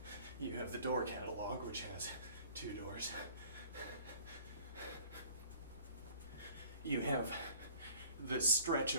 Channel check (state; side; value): inverted; both; correlation -0.51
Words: You have the door catalog, which has 2 doors. You have the stretch